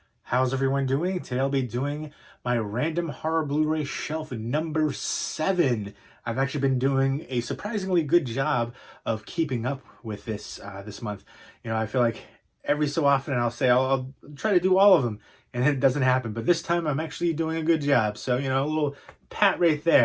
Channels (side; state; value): both; identical; correlation 1.00